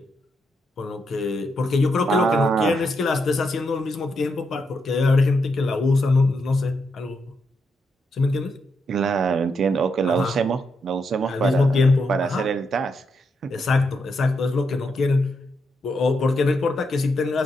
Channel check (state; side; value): normal; both; correlation 0.81